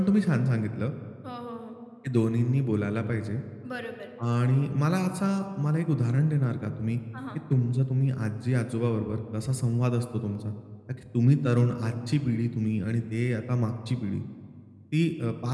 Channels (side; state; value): both; identical; correlation 1.00